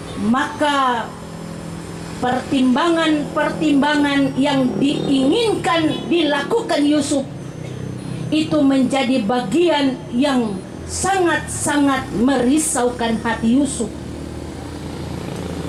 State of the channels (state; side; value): identical; both; correlation 1.00